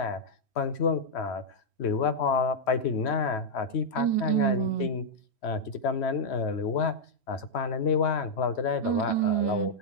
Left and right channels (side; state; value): right; late; 3.1 ms